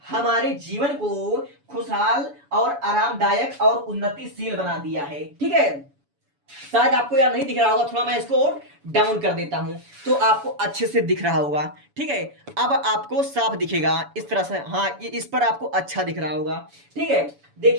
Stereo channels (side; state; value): left; late; 7.0 ms